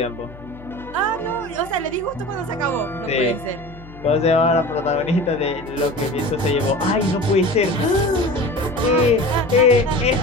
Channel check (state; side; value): noise; left; hum, 19 dB below the sound